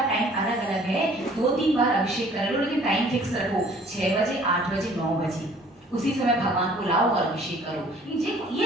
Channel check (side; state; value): both; normal; correlation 0.54